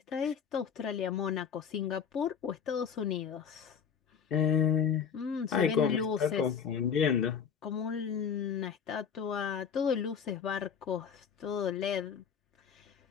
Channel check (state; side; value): quieter; right; 7.2 dB